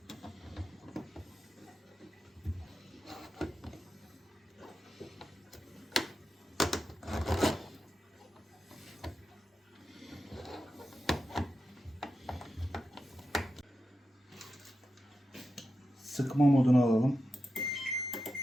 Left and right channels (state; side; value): normal; both; correlation 0.89